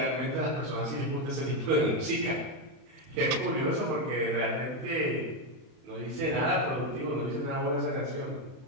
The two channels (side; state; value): left; late; 31 ms